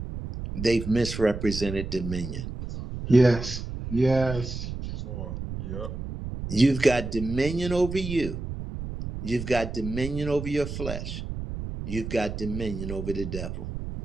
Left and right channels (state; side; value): noise; right; rumble, 7 dB below the sound